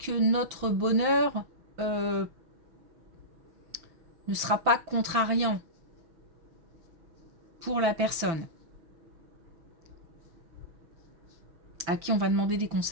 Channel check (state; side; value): late; left; 5.9 ms